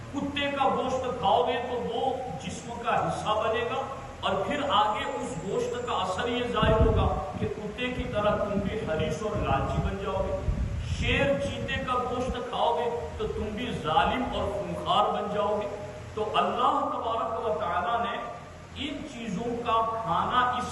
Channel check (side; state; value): both; identical; correlation 1.00